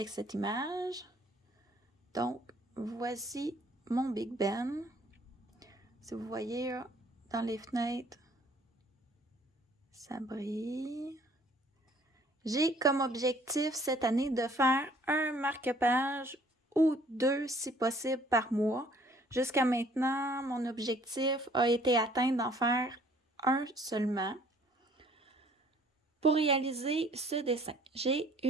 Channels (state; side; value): normal; both; correlation 0.58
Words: cette image. Donc, voici mon Big Ben. Si vous voyez là, dans les fenêtres, ça brille. J'ai comme objectif cette année de faire un marque-page ou deux si possible par mois. Jusqu'à maintenant, mon objectif a été atteint d'en faire un seulement. Pour réaliser ce dessin, j'ai